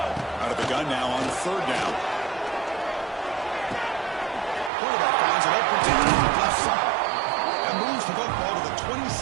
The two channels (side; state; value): left; drops out; at 4.7 s